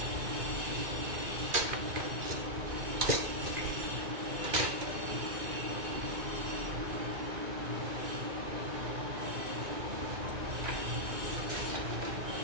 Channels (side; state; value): left; late; 2.5 ms